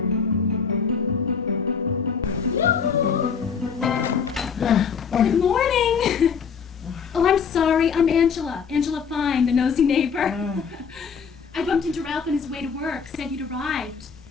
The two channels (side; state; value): right; quieter; 6.3 dB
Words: Good morning. Oh, I'm sorry. I'm Angela. Angela Fine, the nosy neighbor. I bumped into Ralph on his way to work. Said you'd arrived.